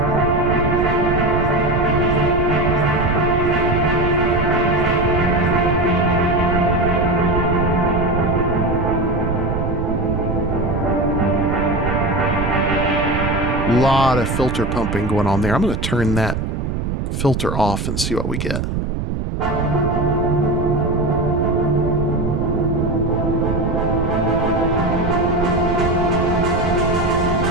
Lot of filter pumping going on there. I'm going to turn that filter off and see what we get. All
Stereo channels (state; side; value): noise; right; rumble, 2 dB below the sound